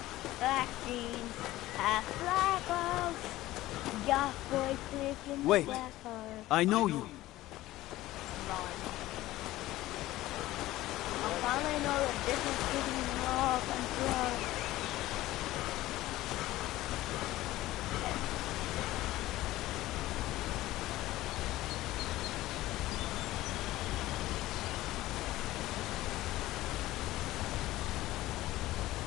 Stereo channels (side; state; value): right; quieter; 16.5 dB